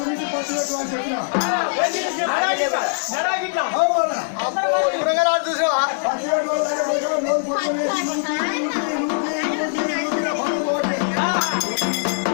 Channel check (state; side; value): silent; right; digital silence